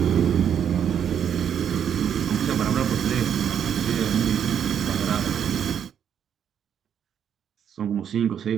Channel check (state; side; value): quieter; left; 8.7 dB